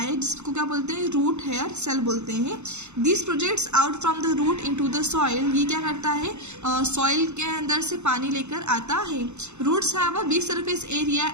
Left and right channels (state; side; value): late; left; 0.82 ms